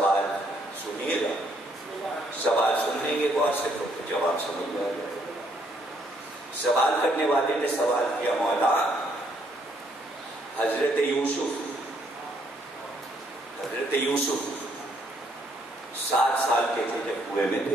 سنیے گا, سوال سننے کے بعد سے تو جواب سمجھ میں آ جائے. سوال کرنے والے نے سوال کیا, مولا حضرت یوسف 7 سال کے تھے جب کنویں میں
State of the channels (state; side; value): normal; both; correlation 0.69